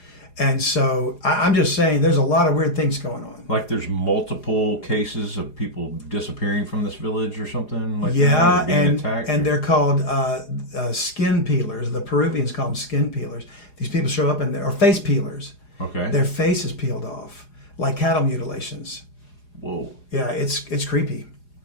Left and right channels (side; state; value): right; late; 4.8 ms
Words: And so I'm just saying there's a lot of weird things going on. Like there's multiple cases of people disappearing from this village or something like that? Or being attacked? And they're called skin peelers. The Peruvians call them skin peelers. These people show up or face peelers. Okay. Their face is peeled off, like cattle mutilations. Whoa. Yeah, it's creepy.